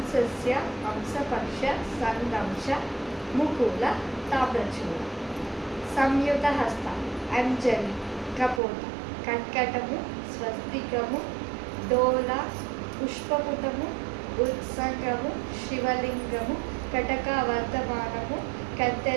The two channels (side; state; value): left; drops out; at 8.6 s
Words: హంసపక్ష, సందంశ, ముకుల, తామ్రచూడ. సంయుత హస్త, అంజలి, కపోత, కర్కటము, స్వస్తికము, డోల, పుష్పపుటము, ఉత్సంగము, శివలింగము, కటకవర్ధమానము,